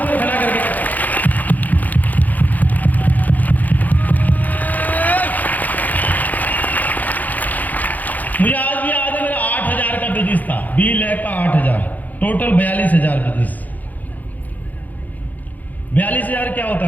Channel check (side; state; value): right; late; 0.082 ms